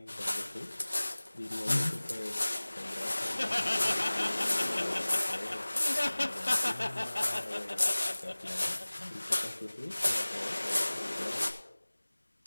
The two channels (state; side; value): inverted; both; correlation -1.00